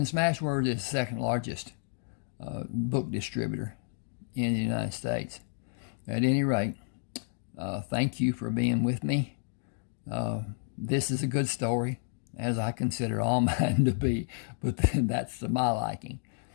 is the second largest book distributor in the United States. At any rate, thank you for being with me. This is a good story, as I consider all mine to be, but that's to my liking.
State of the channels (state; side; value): silent; right; 57 dB below the other